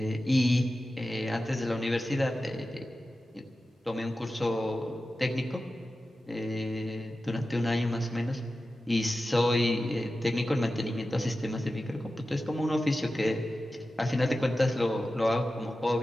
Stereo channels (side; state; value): both; normal; correlation 0.93